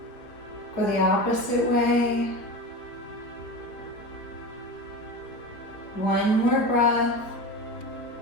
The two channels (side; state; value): right; late; 4.4 ms